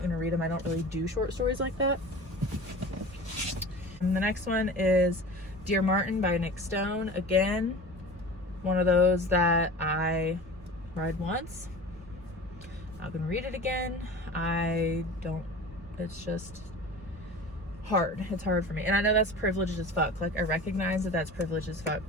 to read them. I don't really do short stories like that. And the next one is Dear Martin by Nick Stone. Again, one of those that I read once. Not gonna read it again. It's just hard. It's hard for me. And I know that's privileged as fuck. I recognize that that's privileged as fuck,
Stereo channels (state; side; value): normal; both; correlation 0.37